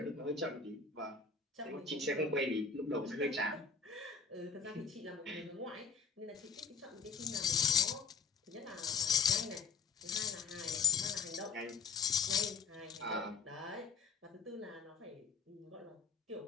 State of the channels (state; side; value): quieter; right; 5.2 dB